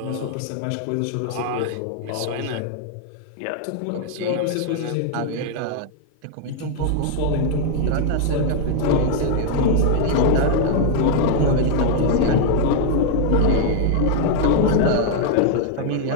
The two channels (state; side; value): different; both; correlation 0.00